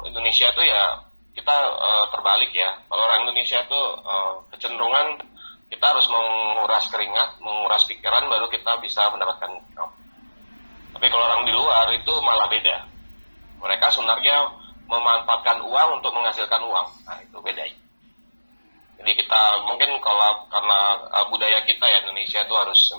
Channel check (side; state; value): both; inverted; correlation -1.00